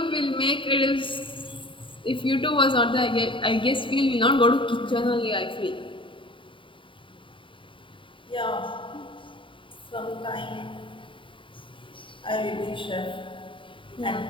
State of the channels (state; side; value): late; right; 0.25 ms